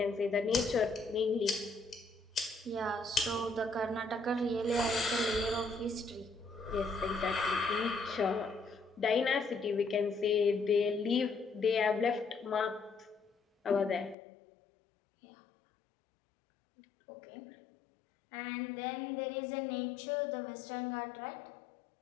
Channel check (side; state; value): right; drops out; at 14.2 s